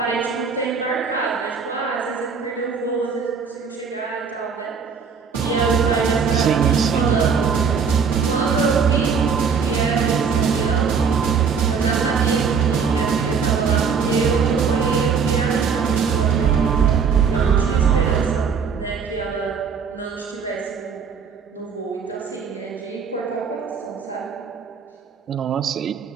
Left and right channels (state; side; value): quieter; left; 6.0 dB